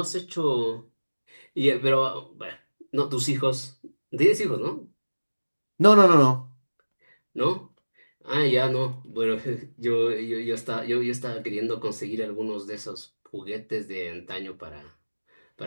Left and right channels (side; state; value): both; inverted; correlation -1.00